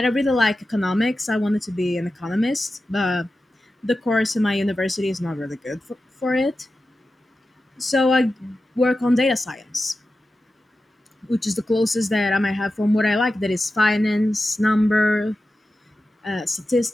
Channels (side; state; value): both; normal; correlation 0.92